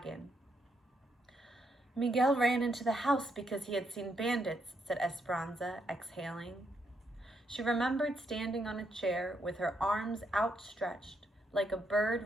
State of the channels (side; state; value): both; normal; correlation 0.78